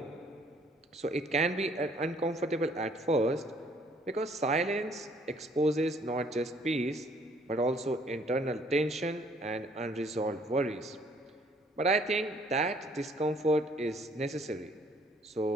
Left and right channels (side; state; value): both; normal; correlation 0.62